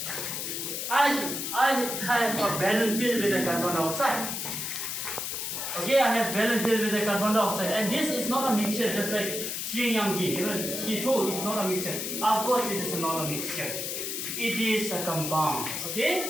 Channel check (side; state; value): left; noise; hiss, 3 dB below the sound